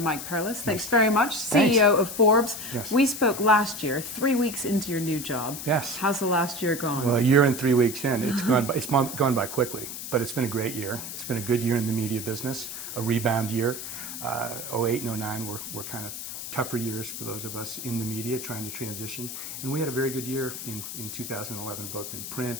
Perlis. Thanks very much, CEO of Forbes. Yes. We spoke last year, 3 weeks into your new job. Yes. How's the last year gone? Well, a year and 3 weeks in, it's gone by quickly, but it's been a great year. It's been a good year in the media business, a rebound year. 08 and 09 were kind of tougher years for those of us in the media trying to transition, and we had a very good year in 2011, both in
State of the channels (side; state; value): left; noise; hiss, 8 dB below the sound